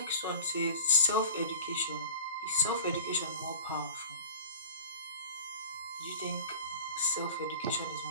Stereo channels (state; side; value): inverted; both; correlation -0.40